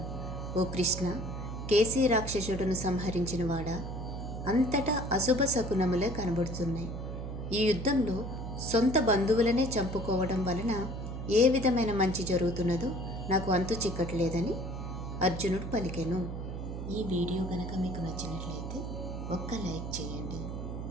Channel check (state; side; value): noise; right; hum, 6 dB below the sound